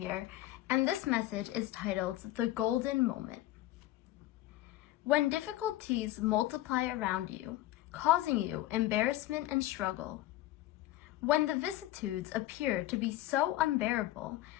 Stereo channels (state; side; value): quieter; right; 15.6 dB